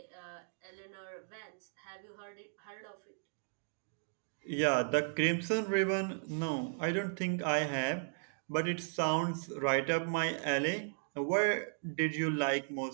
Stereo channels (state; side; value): silent; left; digital silence